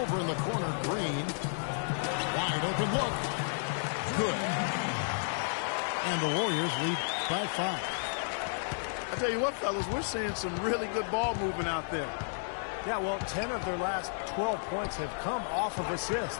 in the corner, Green. Wide open look. Good. And the Warriors lead by 5. I tell you what, fellas, we're seeing some really good ball movement out there. Yeah, well, 10 of their last 12 points have come off of assists.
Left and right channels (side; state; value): right; silent; digital silence